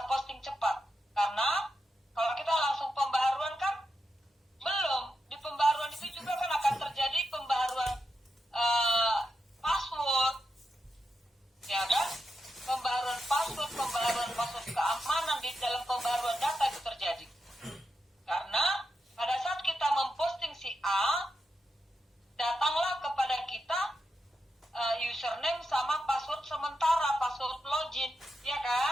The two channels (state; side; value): normal; both; correlation 0.86